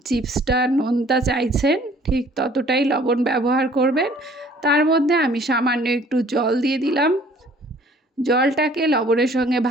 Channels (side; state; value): both; normal; correlation 0.55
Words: চিপসটা নোনতা চাইছেন ঠিক ততটাই লবণ ব্যবহার করবেন। তার মধ্যে আমি সামান্য একটু জল দিয়ে দিলাম। জলটাকে লবণের সঙ্গে